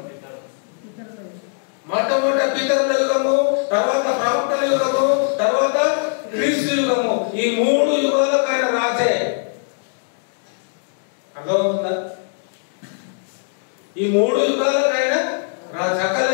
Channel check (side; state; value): right; silent; digital silence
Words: మొట్టమొదటి పితరుల యుగము, తర్వాత ప్రవక్తల యుగము, తర్వాత క్రీస్తు యుగము. ఈ 3 యుగాలకు ఆయన రాజే. అర్థమవుతుందా? ఈ 3 యుగాలకు ఆయన సకల